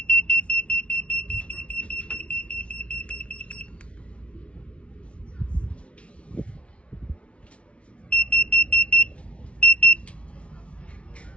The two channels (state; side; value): late; right; 0.061 ms